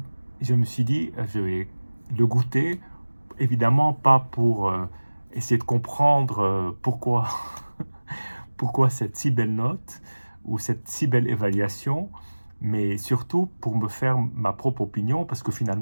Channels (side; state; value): both; inverted; correlation -1.00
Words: je me suis dit, je vais le goûter, évidemment pas pour essayer de comprendre pourquoi cette si belle note ou cette si belle évaluation, mais surtout pour me faire ma propre opinion, parce que